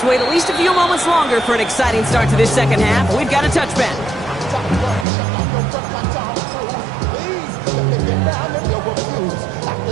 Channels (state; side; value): drops out; left; at 5.1 s